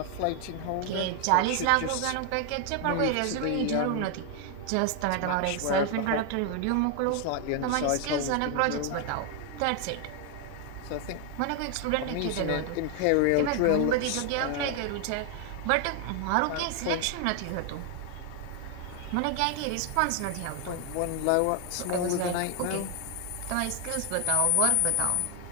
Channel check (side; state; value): both; different; correlation 0.00